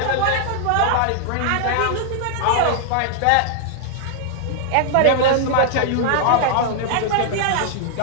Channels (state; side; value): different; both; correlation -0.01